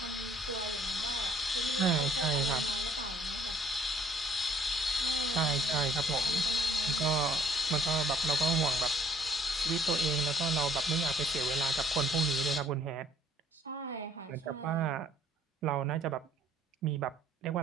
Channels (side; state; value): both; normal; correlation 0.61